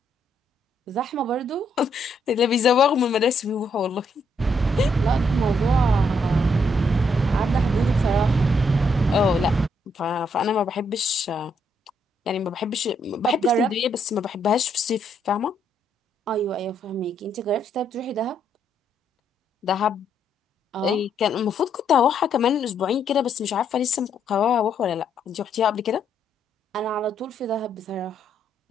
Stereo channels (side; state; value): both; normal; correlation 0.74